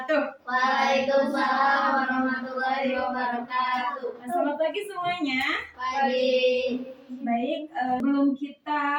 Waalaikumsalam warahmatullahi wabarakatuh. Selamat pagi semuanya. Pagi. Baik, sebelum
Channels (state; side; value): identical; both; correlation 1.00